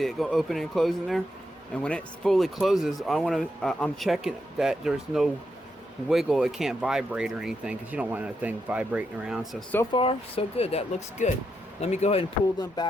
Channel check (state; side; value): normal; both; correlation 0.83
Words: it go open and closing there? And when it fully closes, I'm checking that there's no wiggle. It can't vibrate or anything, because you don't want that thing vibrating around. So far, so good. That looks good. Let me go ahead and pull them